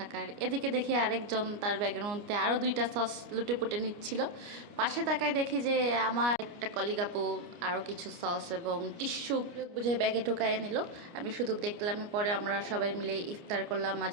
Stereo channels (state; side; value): late; left; 29 ms